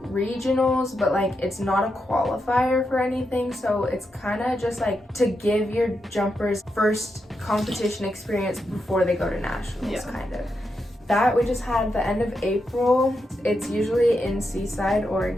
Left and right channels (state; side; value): normal; both; correlation 0.85